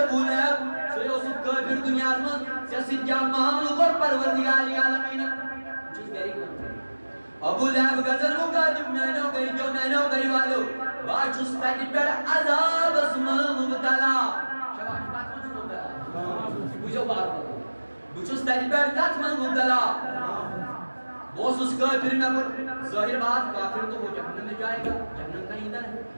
Leheb. Soyosuk kafir dünyasımız siyaset camianı kor parvardigari alamine. Çiz gerçekten. Ebu Leheb gazan mukadim meno gari valo. Baçus takip per azab asmanı mubtala. Şabaş batman mubtala. Bujo bağırma. Buçus takip per katman mubtala. वो उस काफिर में पर जाहिर बात काफिर तो वो जहन्नम में जाएगा जहन्नम का ईंधन है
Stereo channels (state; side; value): inverted; both; correlation -1.00